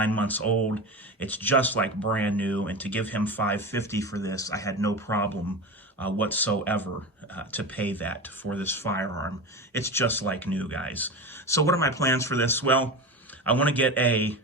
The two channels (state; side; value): normal; both; correlation 0.25